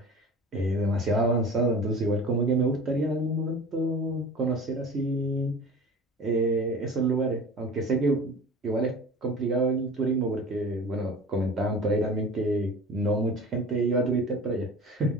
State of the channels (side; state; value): both; normal; correlation 0.38